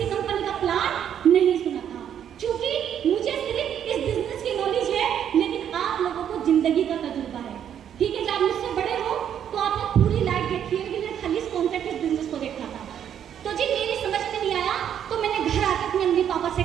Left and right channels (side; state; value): left; quieter; 9.3 dB